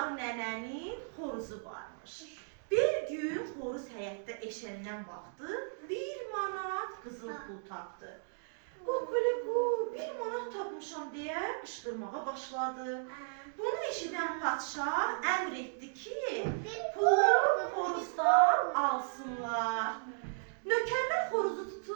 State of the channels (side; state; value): left; silent; digital silence